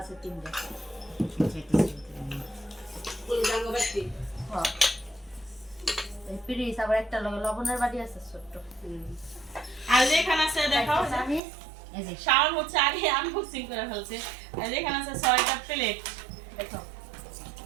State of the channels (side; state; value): left; drops out; at 11.4 s